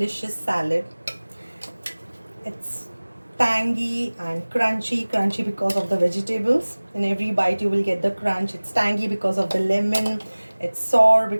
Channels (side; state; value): both; inverted; correlation -1.00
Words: salad. It's tangy and crunchy because of the vegetables. In every bite you will get the crunch. It's tangy because of the lemon. It's sour